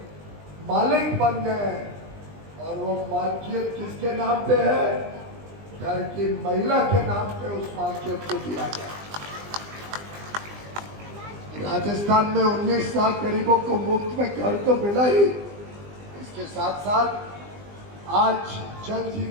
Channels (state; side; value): late; left; 20 ms